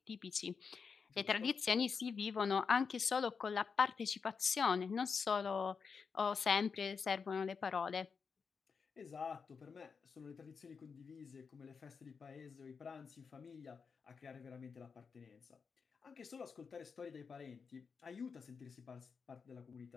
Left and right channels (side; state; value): right; quieter; 5.6 dB